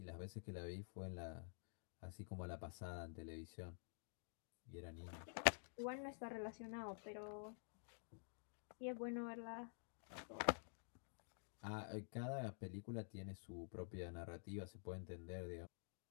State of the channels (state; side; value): silent; right; digital silence